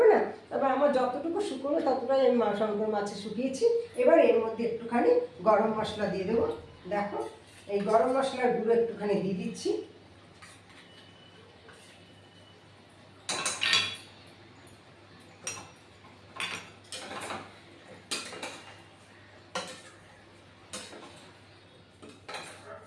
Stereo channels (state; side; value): identical; both; correlation 1.00